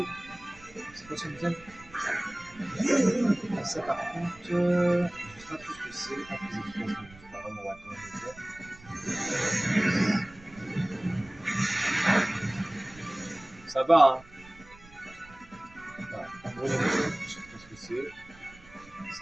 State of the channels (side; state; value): right; noise; rumble, 22 dB below the sound